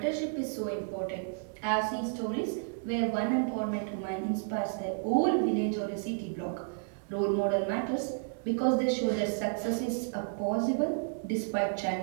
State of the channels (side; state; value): left; silent; digital silence